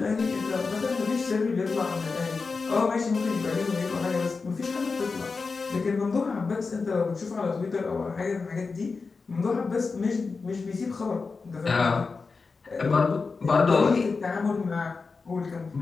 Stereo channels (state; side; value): quieter; right; 4.5 dB